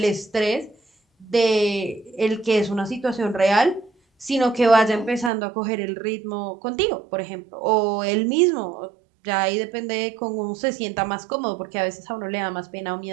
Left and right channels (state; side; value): drops out; left; at 5.3 s